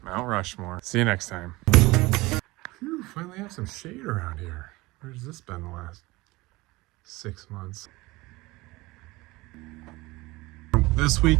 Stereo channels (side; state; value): left; quieter; 21.3 dB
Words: Mount Rushmore. See you next time. Phew, finally have some shade around here. Where's this been the last 6 months? This